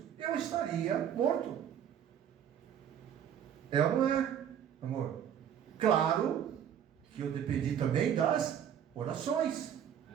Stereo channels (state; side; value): quieter; left; 9.2 dB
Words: eu estaria morto. É ou não é, amor? Claro que eu dependi também das orações.